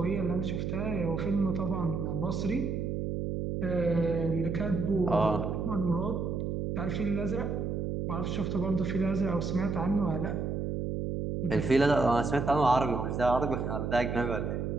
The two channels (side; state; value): right; noise; hum, 2 dB below the sound